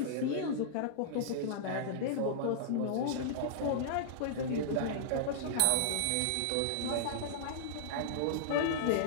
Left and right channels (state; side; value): different; both; correlation -0.02